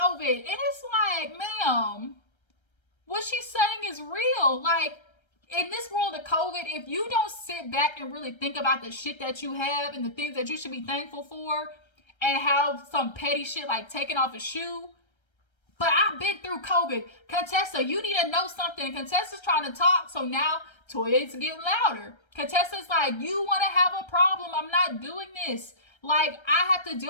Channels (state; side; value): late; right; 1.3 ms